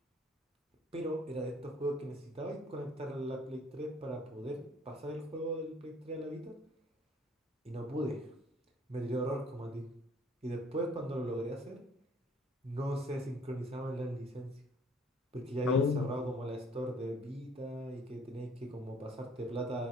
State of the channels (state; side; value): normal; both; correlation 0.57